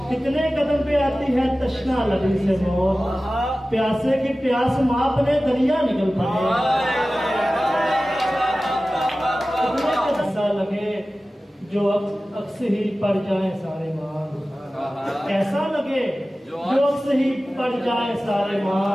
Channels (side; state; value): both; normal; correlation 0.96